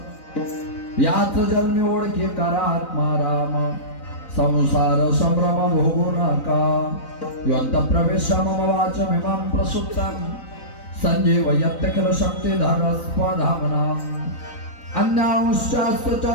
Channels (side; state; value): right; late; 4.0 ms